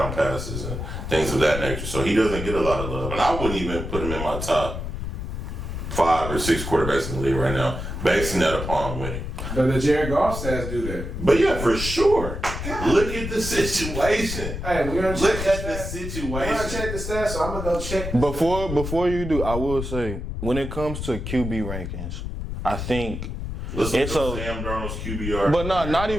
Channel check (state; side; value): noise; left; rumble, 5 dB below the sound